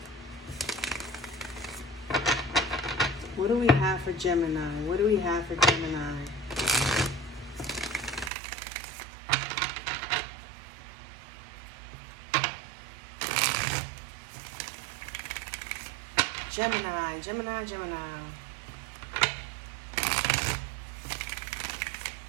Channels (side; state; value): left; drops out; at 8.3 s